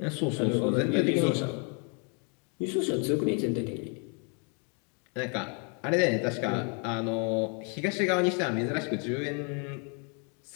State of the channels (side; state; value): right; quieter; 37.4 dB